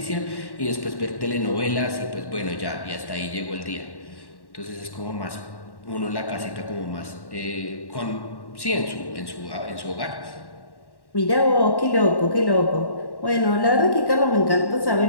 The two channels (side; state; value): right; late; 1.1 ms